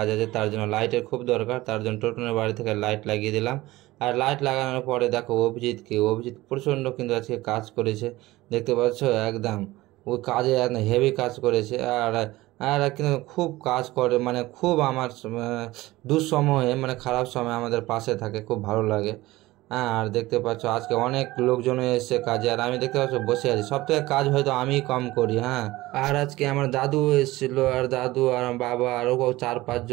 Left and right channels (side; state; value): left; quieter; 18.5 dB